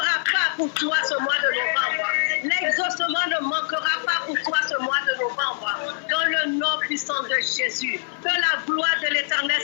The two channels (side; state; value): right; silent; 61 dB below the other